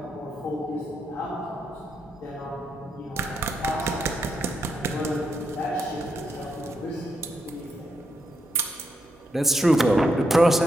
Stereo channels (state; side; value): normal; both; correlation 0.81